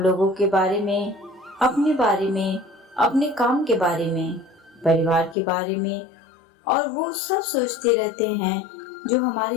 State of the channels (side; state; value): right; drops out; at 5.4 s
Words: के बारे में, अपने बारे में, अपने काम के बारे में, परिवार के बारे में और वो सब सोचते रहते हैं जो